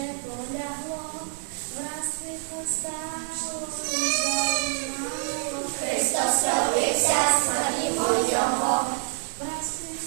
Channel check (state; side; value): silent; left; 60 dB below the other